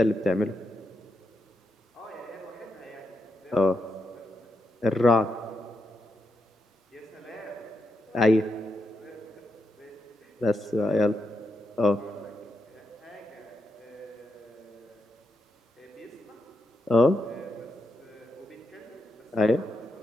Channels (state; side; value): normal; both; correlation 0.84